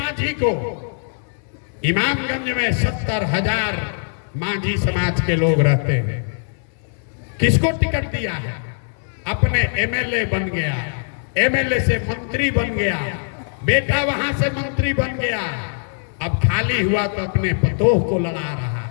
को, इमामगंज में 70,000 मांझी समाज के लोग रहते हैं। किसको टिकट दिया है? अपने एमएलए बन गया, एमएलए से मंत्री बन गया, बेटा वहां से मंत्री बन गया। अब खाली हुआ तो अपने पतोह को लड़ा रहा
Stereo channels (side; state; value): right; silent; 65 dB below the other